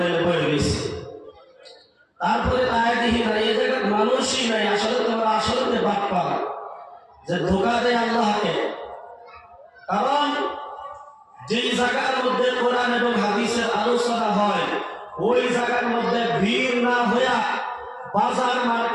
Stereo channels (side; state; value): both; identical; correlation 1.00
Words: বয়ে গেছে। তারপরে তাই দেখি না, এই জায়গার মানুষই নাই। আসলে তোমরা আসলে বাপ্পা যে ধোকা দেয় আল্লাহকে। কারণ যেই জায়গার মধ্যে কোরআন এবং হাদিসের আলোচনা হয়, ওই জায়গার মধ্যে ভিড় না হইয়া বাজার